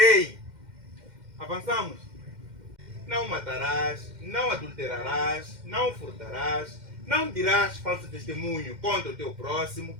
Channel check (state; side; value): late; left; 2.1 ms